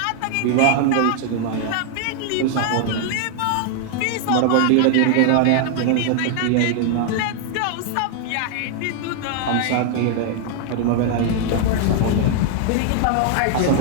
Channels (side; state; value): both; different; correlation 0.00